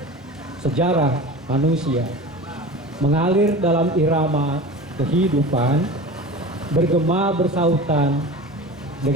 sejarah manusia mengalir dalam irama kehidupan, bergema bersautan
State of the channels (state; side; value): normal; both; correlation 0.34